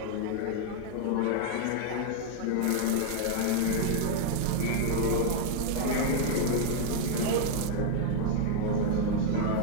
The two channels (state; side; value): different; both; correlation 0.00